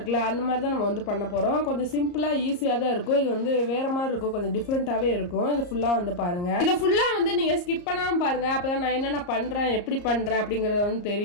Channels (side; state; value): right; late; 34 ms